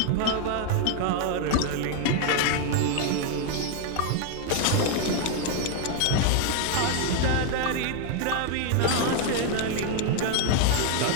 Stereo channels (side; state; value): both; different; correlation 0.01